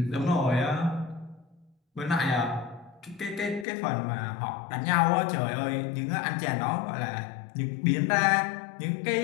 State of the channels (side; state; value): right; drops out; at 3.7 s